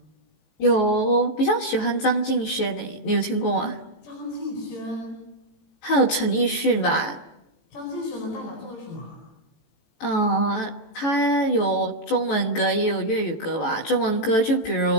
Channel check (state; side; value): late; right; 18 ms